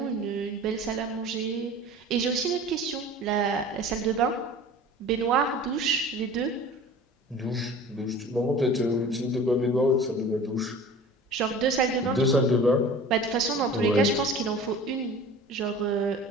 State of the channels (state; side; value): normal; both; correlation 0.41